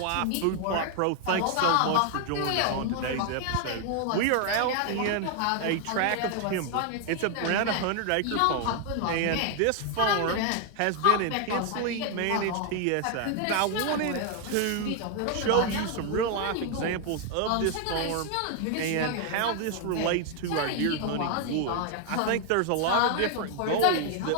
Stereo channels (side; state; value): both; different; correlation 0.01